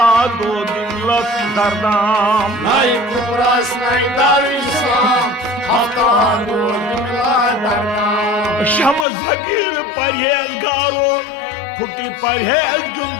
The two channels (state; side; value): drops out; right; at 9.1 s